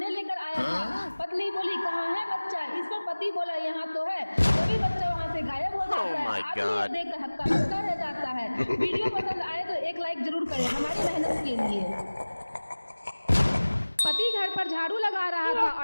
लेकर आया था। पत्नी बोली कहाँ है बच्चा? इस पर पति बोला यहाँ तो है। तभी बच्चा वहाँ से गायब हो जाता है। आदमी देख कर हक्का बक्का रह जाता है। वीडियो पसंद आए तो एक लाइक जरूर करें हमारी मेहनत के लिए। पति घर पर झाड़ू लगा रहा था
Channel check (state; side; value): inverted; both; correlation -1.00